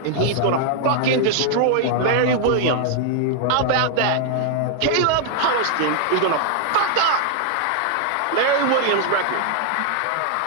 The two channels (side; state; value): both; different; correlation 0.00